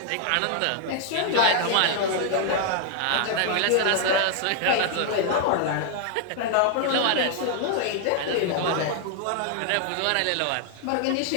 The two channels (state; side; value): different; both; correlation 0.00